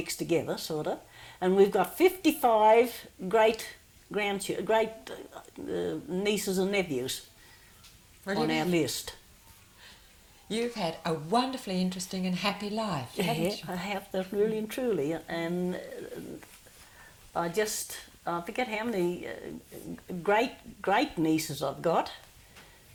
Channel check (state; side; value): identical; both; correlation 1.00